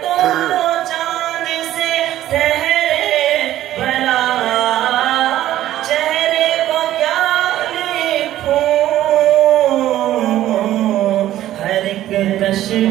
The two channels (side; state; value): left; quieter; 13.4 dB